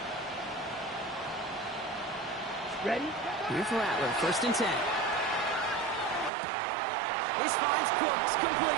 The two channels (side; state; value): left; drops out; at 6.3 s